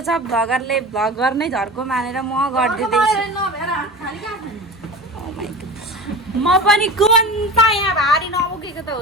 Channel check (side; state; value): both; normal; correlation 0.33